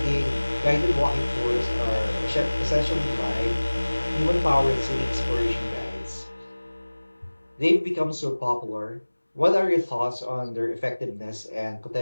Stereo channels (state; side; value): inverted; both; correlation -1.00